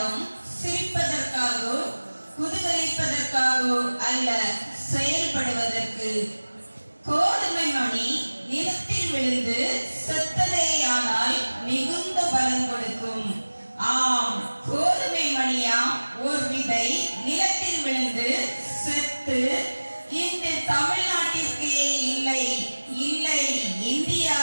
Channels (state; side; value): inverted; both; correlation -1.00